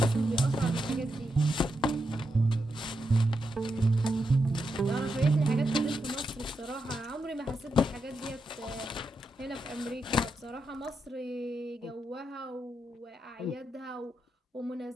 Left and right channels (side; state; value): both; normal; correlation 0.85